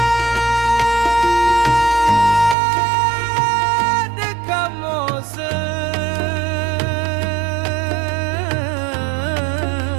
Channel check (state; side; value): drops out; left; at 2.6 s